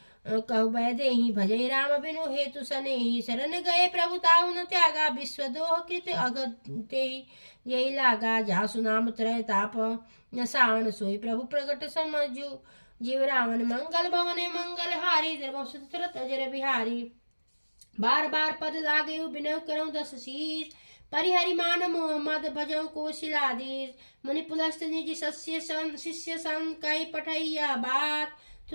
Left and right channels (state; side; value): inverted; both; correlation -1.00